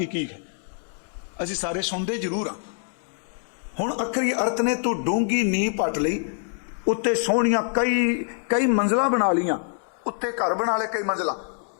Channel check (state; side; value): silent; right; digital silence